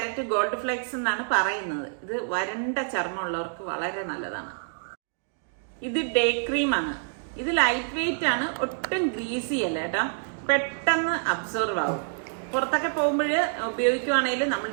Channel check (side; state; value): left; silent; digital silence